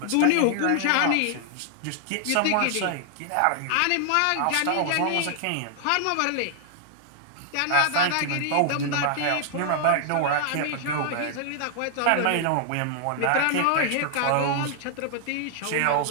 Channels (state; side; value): different; both; correlation 0.00